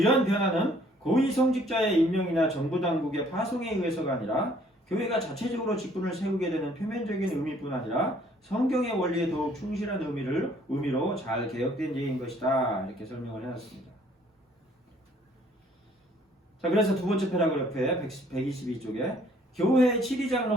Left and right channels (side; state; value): both; normal; correlation 0.61